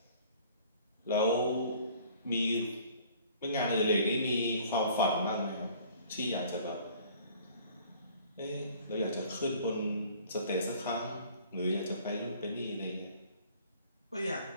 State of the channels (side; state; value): both; inverted; correlation -0.53